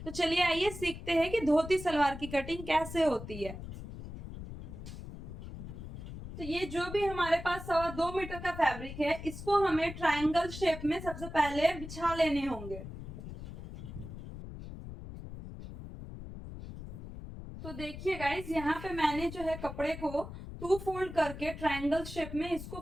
तो चलिए आइए सीखते हैं कि धोती सलवार की कटिंग कैसे होती है। तो ये जो भी हमारे पास 2.25 मीटर का फैब्रिक है, इसको हमें ट्रायंगल शेप में सबसे पहले बिछा लेने होंगे। तो देखिए गाइस, यहाँ पे मैंने जो है कपड़े को 2 फोल्ड करके ट्रायंगल शेप में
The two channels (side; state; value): left; noise; rumble, 10 dB below the sound